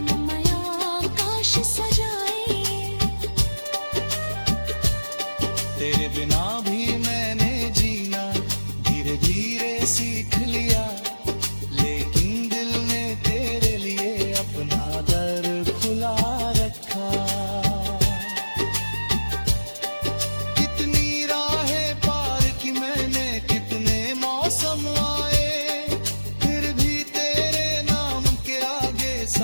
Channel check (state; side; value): inverted; both; correlation -1.00